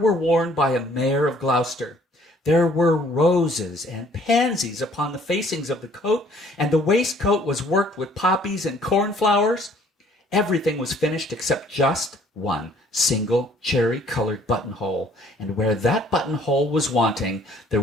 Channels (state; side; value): normal; both; correlation 0.58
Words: worn by a mayor of Gloucester. There were roses and pansies upon the facings of the coat, and the waistcoat was worked with poppies and cornflowers. Everything was finished except just one single cherry-colored buttonhole, and where that buttonhole was wanting, there